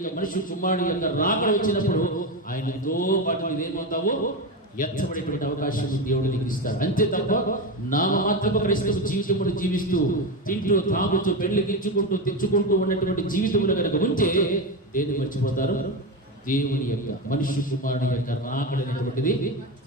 మనిషి కుమారుడు యొక్క రాకడ వచ్చినప్పుడు ఆయనతో పాటు నీవేమవుతావో ఎత్తబడేటువంటి అవకాశం దేవుడు నీకు ఇస్తాడు. అంతే తప్ప నామమాత్రపు క్రైస్తవ జీవితమును జీవిస్తూ తింటూ తాగుతూ పెళ్లికించుకుంటూ తెచ్చుకుంటూ ఉన్నటువంటి జీవితములు కనుక ఉంటే దేన్ని మర్చిపోతారు? దేవుని యొక్క మనిషి కుమారుడు యొక్క రాకడ అనేటువంటిది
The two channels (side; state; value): both; normal; correlation 0.16